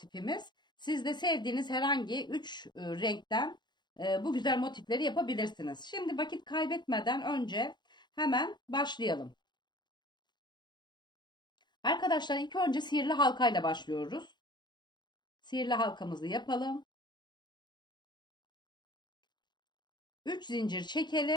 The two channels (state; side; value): late; right; 0.21 ms